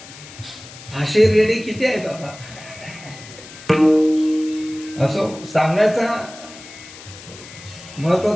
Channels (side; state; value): left; noise; hiss, 17 dB below the sound